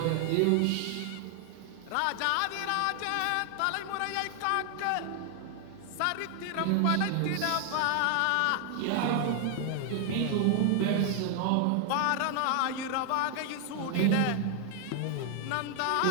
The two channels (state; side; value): different; both; correlation 0.00